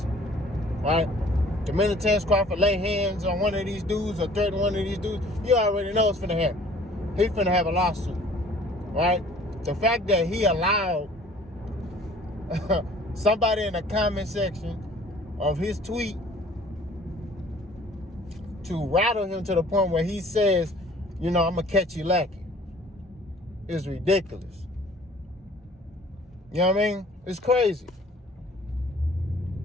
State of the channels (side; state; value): both; normal; correlation 0.52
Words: right? The minute Terence Crawford lay hands on one of these dudes or threaten one of these dudes, you already know what's finna happen. He's finna have a lawsuit, right? The fact that he allowed somebody in the comment section of his tweet to rattle him to the point where he says, you know, I'm gonna catch you lacking, is ridiculous. You know what I mean? It's crazy.